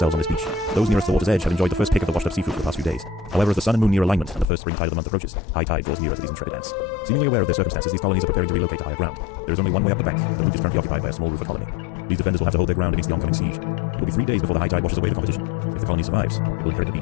on this beach. Those nearest the water's edge have enjoyed the first pick of the washed-up seafood for the past few days. However, as the sun and moon near alignment and the first spring tide of the month approaches, high tide draws nearer to these intrepid ants. Seemingly aware of their circumstances, these colonies are preparing to relocate to higher ground. There is only one way up the bank. The route is currently occupied by a small rufer colony. These defenders will have to hold their ground against the oncoming siege. It will be 3 days before the high tide washes away the competition. If the colony survives, it will inherit the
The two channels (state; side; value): drops out; right; at 4.5 s